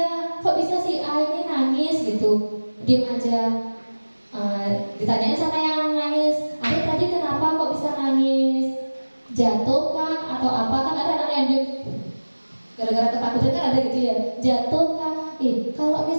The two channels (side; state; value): both; inverted; correlation -1.00